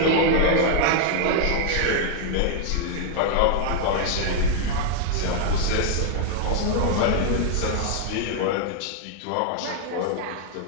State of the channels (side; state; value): both; different; correlation 0.00